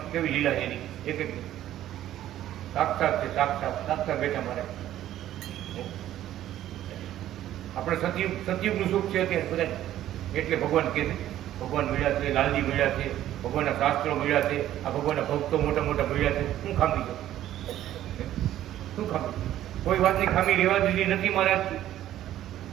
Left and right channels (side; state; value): left; quieter; 12.7 dB